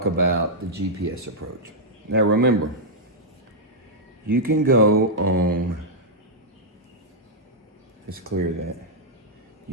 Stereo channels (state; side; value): normal; both; correlation -0.07